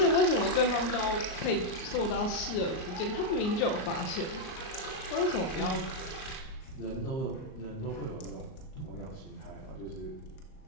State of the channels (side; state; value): right; late; 38 ms